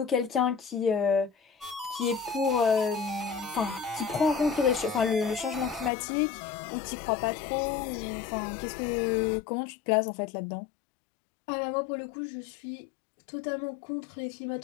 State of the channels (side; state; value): right; drops out; at 5.9 s